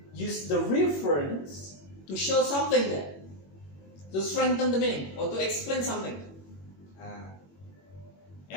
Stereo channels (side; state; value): right; late; 21 ms